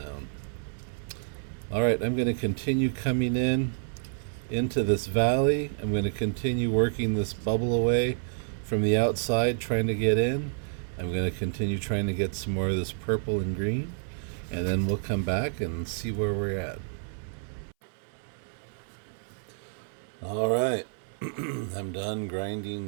Alright, I'm going to continue coming into this valley. I'm going to continue working this bubble away from the outside, trying to get in. I'm going to continue trying to get some more of this purple and green, and then we'll come back and see where we're at. Alright, I'm done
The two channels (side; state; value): left; silent; 58 dB below the other